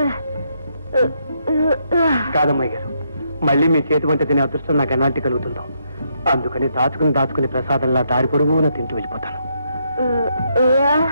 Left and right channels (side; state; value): both; inverted; correlation -0.76